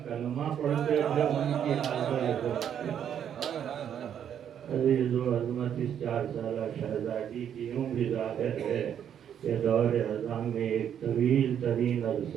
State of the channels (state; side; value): quieter; left; 9.1 dB